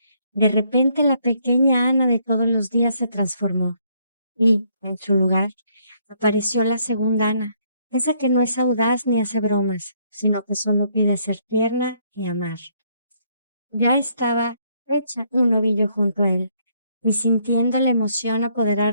de repente la pequeña Ana de todos los días se transformó y, en su lugar, apareció la segunda Ana, esa que no es audaz ni hace bromas, sino que solo pide ser tierna y amar. Ya estaba hecha un ovillo junto a él, y sintiendo la emoción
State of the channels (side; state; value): both; inverted; correlation -0.69